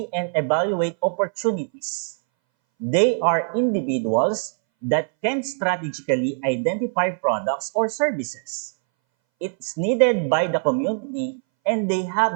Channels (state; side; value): silent; left; 62 dB below the other